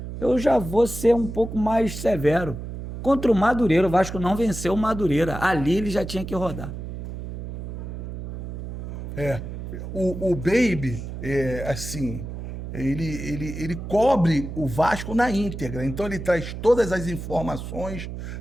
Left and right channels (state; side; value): noise; right; hum, 8 dB below the sound